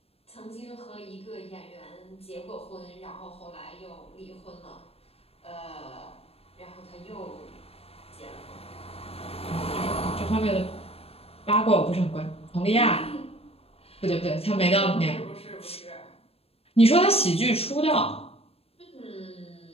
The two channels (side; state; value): right; late; 0.28 ms